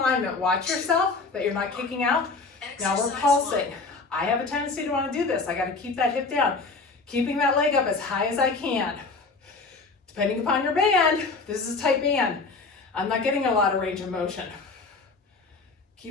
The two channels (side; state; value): right; quieter; 4.0 dB